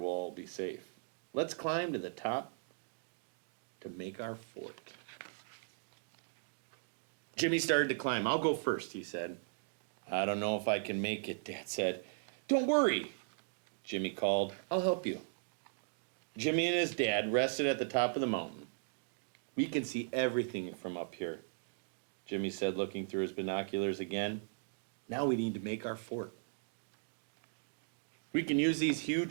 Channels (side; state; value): left; silent; digital silence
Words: all be safe. Let's climb to the top to make our fort. Jimmy started to climb. I'll go first, he said. I don't know if I can make it, Dad said. Don't worry, Jimmy called. I'll help you. Jimmy and his dad rested at the top of the mountain. We can see everything from up here, Jimmy said, looking through his binoculars again. Now we need to make our fort. We can use these